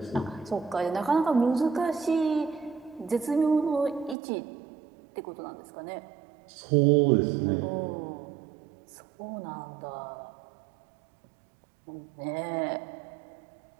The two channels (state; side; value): drops out; left; at 4.2 s